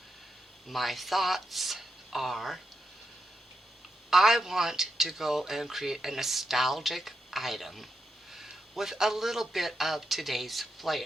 My thoughts are I want to go and create a nostalgic item with a little bit of today's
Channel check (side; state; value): both; normal; correlation 0.84